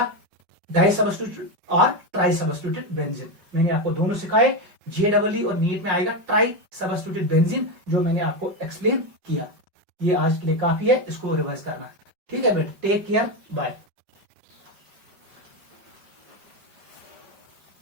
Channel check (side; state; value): left; late; 5.2 ms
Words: डाई सब्स्टिट्यूटेड और ट्राई सब्स्टिट्यूटेड बेंजीन। मैंने आपको दोनों सिखाए, JEE और नीट में आएगा ट्राई सब्स्टिट्यूटेड बेंजीन, जो मैंने आपको एक्सप्लेन किया। ये आज के लिए काफी है, इसको रिवाइज करना, ठीक है बेटा। Take care, bye.